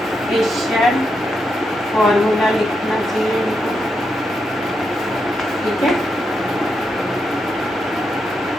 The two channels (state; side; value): normal; both; correlation 0.83